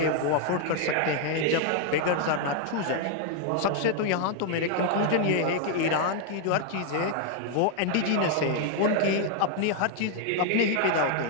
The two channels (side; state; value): both; different; correlation 0.00